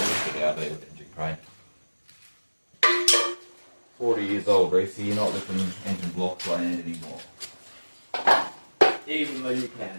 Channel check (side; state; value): both; inverted; correlation -1.00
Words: it out there with the engine crane. 40 years old, Reese, you're not lifting engine blocks by hand anymore. Even though you